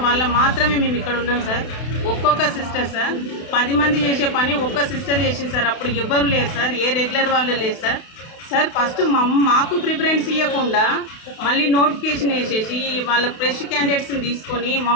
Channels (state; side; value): late; right; 32 ms